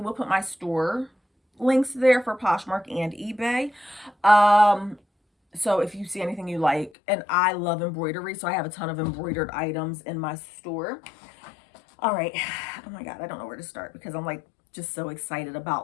put my store links there for Poshmark and eBay. So if you see anything you like, and I love embroidery, so I have a ton of embroidered items in my store. All right. Oh my God, I don't know where to start because I'm like just so excited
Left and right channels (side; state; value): right; drops out; at 6.9 s